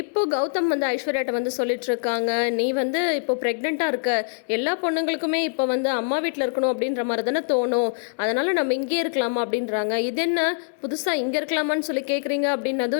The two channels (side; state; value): right; silent; digital silence